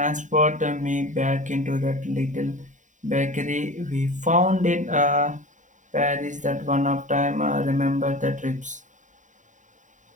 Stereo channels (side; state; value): left; late; 0.36 ms